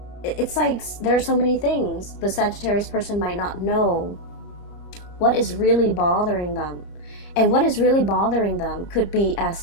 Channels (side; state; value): right; late; 30 ms